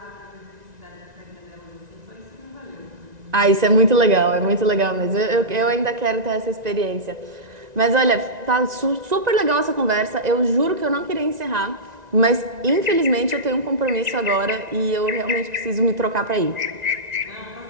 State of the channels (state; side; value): late; left; 1.9 ms